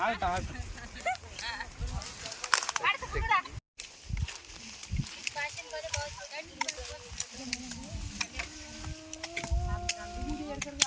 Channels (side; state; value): both; identical; correlation 1.00